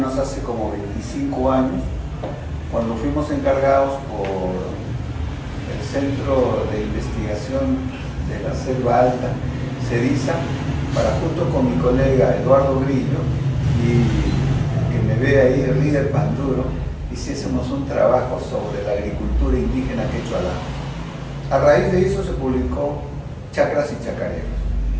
hace como 25 años, cuando fuimos encargados por el Centro de Investigación de la Selva Alta, CEDISA, para junto con mi colega Eduardo Grillo, y que me ve ahí, el líder Panduro, hiciésemos un trabajo sobre la agricultura indígena quechua-alamas. A raíz de eso se publicó Chacras y Chacareros.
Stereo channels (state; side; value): identical; both; correlation 1.00